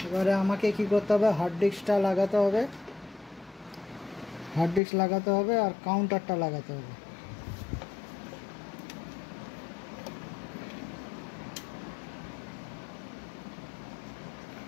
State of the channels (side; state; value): right; drops out; at 4.8 s